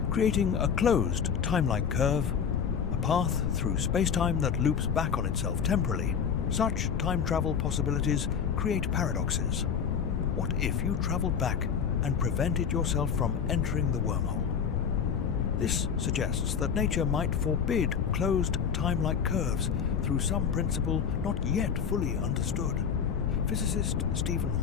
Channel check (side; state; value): right; quieter; 7.1 dB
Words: creating a closed time-like curve, a path through spacetime that loops back on itself temporally. Such time travel possibilities create paradoxes. What if you traveled back and prevented yourself from entering the wormhole? This suggests that nature might forbid closed time-like curves through some principle not yet fully understood. Physicist Stephen